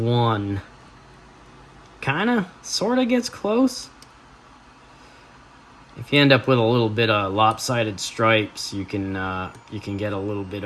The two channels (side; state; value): both; identical; correlation 1.00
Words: sort of gets close. If you end up with a little bit of lopsided stripes, you can get a little bit